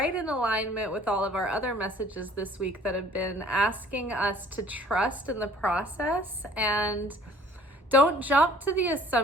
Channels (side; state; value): both; normal; correlation 0.53